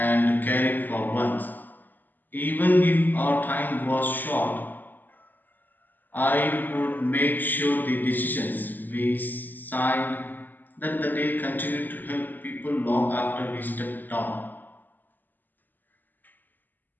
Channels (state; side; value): late; right; 0.087 ms